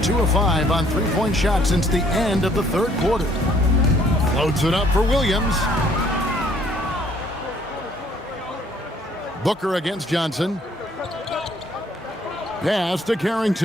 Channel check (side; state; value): both; normal; correlation 0.62